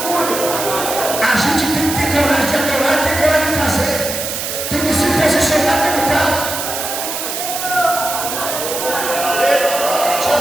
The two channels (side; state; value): right; noise; hiss, 4 dB below the sound